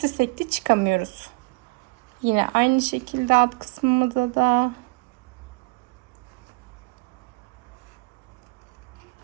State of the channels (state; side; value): quieter; left; 29.3 dB